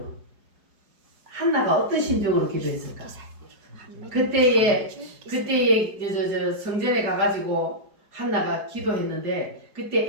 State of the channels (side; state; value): left; late; 4.9 ms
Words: 한나가 어떤 심정으로 기도했을까? 그때에 성전에 가가지고 한나가 기도했는데,